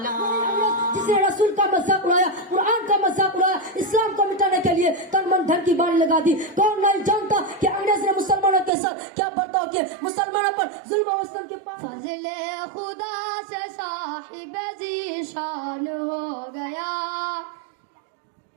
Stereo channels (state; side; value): drops out; left; at 8.7 s